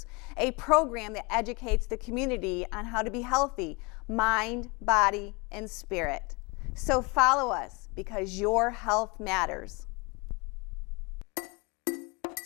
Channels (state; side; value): quieter; right; 28.2 dB